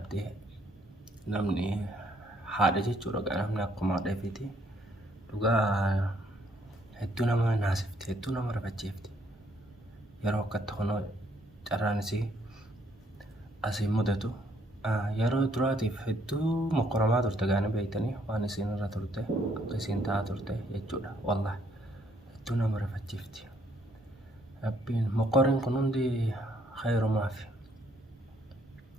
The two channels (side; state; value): both; normal; correlation 0.68